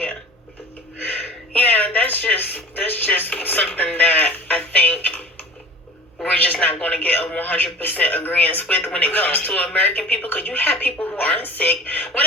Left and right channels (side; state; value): both; normal; correlation 0.40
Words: that's just something that I think we're just not going to get a 100% agreement with when it comes to American people, because you have people who aren't sick. What